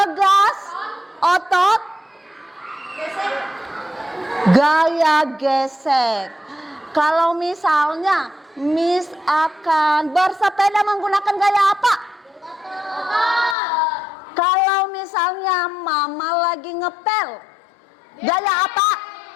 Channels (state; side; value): drops out; right; at 13.6 s